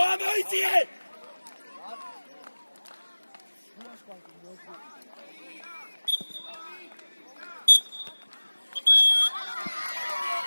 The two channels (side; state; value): both; inverted; correlation -1.00